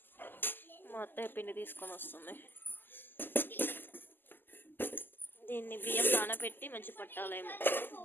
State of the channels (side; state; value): right; late; 0.092 ms